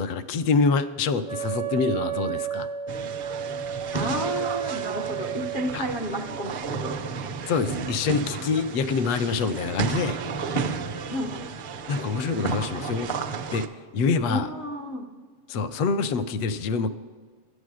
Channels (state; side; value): late; right; 7.5 ms